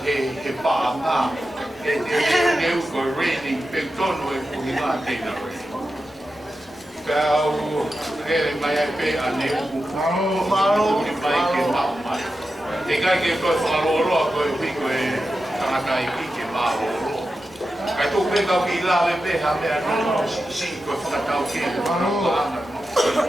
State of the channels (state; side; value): normal; both; correlation 0.91